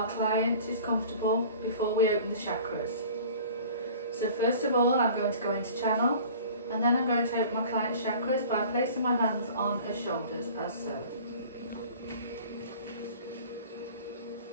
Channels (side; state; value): both; inverted; correlation -0.44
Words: client is comfortable before we open the chakras. So first of all, I'm going to go into channel and then I'm going to open my client's chakras by placing my hands on her shoulders as so.